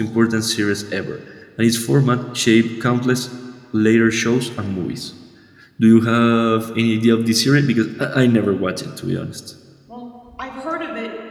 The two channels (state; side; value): identical; both; correlation 1.00